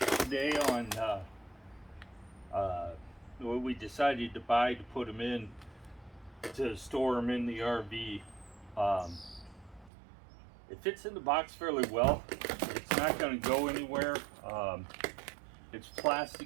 on what we decided to buy to put them in to store them in the RV. It fits in the box fairly well. It's not going to go anywhere. It's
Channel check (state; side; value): drops out; left; at 9.9 s